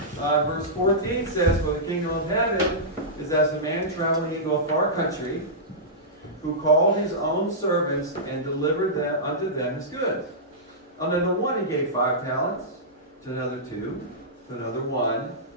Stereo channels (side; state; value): both; normal; correlation -0.15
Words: verse 14 says, "For the kingdom of heaven is as a man traveling into a far country, who called his own servants and delivered them unto them his goods. Unto the one he gave 5 talents, to another 2, to another 1,